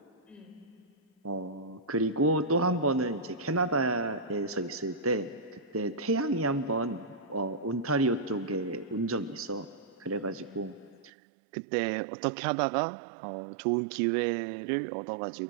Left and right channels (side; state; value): left; drops out; at 11.1 s